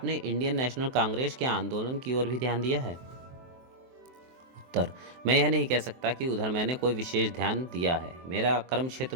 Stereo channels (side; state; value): left; late; 23 ms